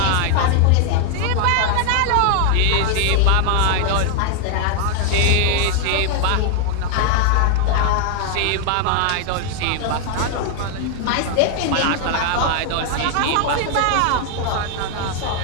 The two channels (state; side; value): different; both; correlation 0.00